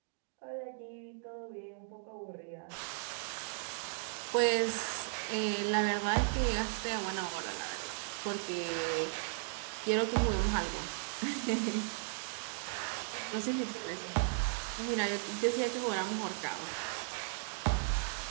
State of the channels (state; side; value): silent; left; digital silence